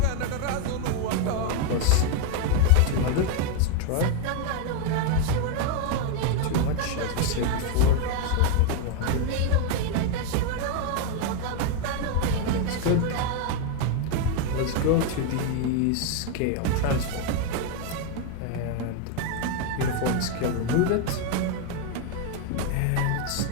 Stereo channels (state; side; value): different; both; correlation 0.01